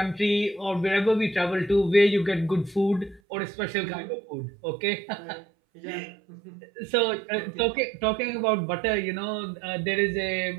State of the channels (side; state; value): left; drops out; at 3.2 s